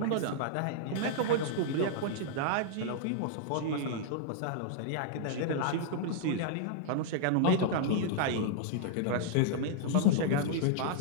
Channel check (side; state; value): both; different; correlation -0.01